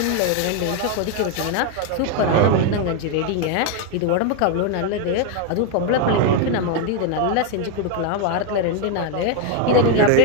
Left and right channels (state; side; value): different; both; correlation 0.01